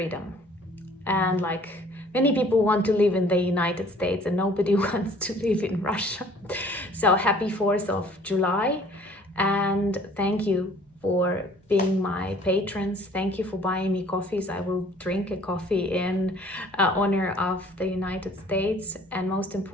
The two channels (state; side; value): normal; both; correlation 0.54